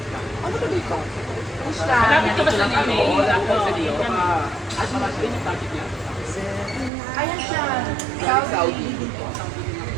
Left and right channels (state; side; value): drops out; left; at 6.9 s